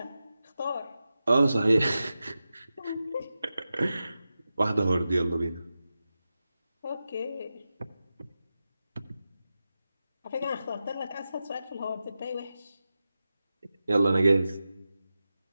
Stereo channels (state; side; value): inverted; both; correlation -0.92